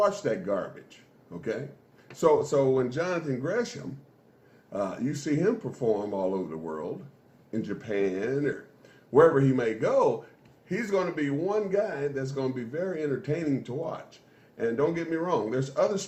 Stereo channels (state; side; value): identical; both; correlation 1.00